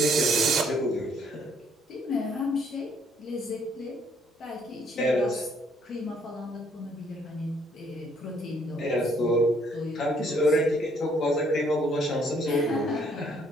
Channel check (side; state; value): both; normal; correlation 0.66